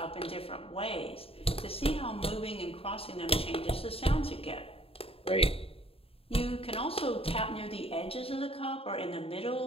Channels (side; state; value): right; late; 0.27 ms